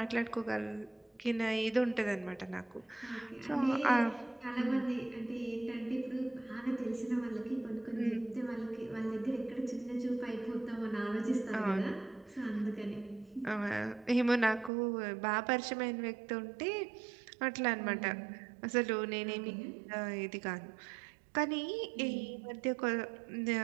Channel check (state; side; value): drops out; left; at 14.7 s